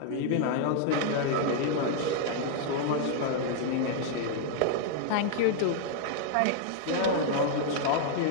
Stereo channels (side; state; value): both; different; correlation -0.01